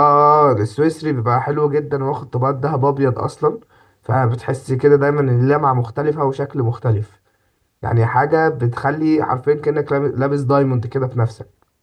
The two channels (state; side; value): identical; both; correlation 1.00